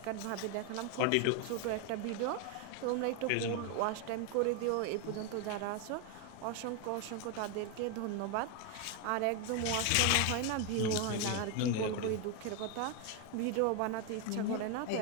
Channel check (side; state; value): both; different; correlation 0.01